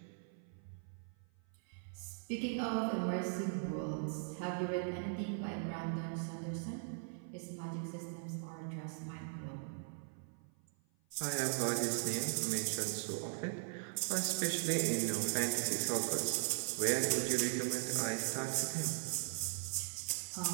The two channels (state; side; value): silent; left; 51 dB below the other